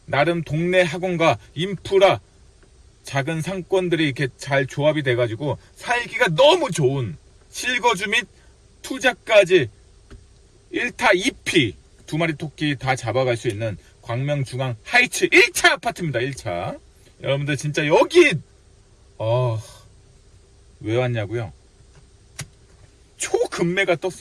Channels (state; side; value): identical; both; correlation 1.00